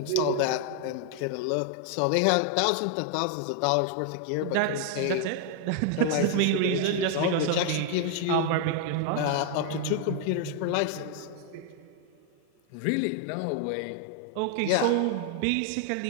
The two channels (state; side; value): different; both; correlation 0.00